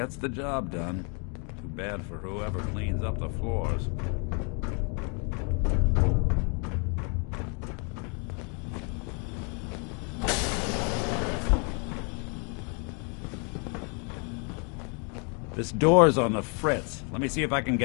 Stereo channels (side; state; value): right; quieter; 37.0 dB